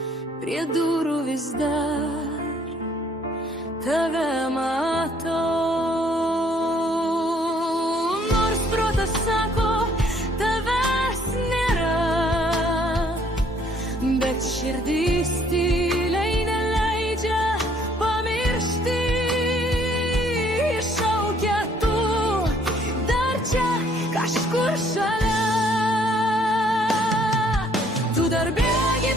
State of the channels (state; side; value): normal; both; correlation 0.63